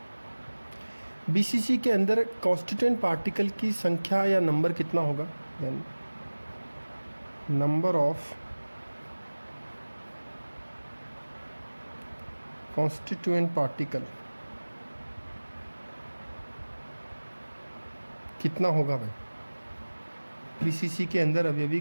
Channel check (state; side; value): inverted; both; correlation -1.00